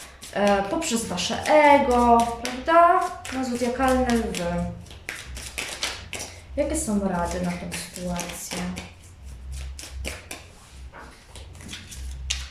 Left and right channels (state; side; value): identical; both; correlation 1.00